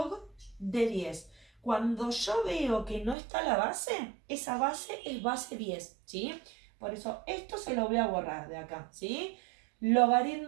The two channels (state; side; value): drops out; left; at 3.2 s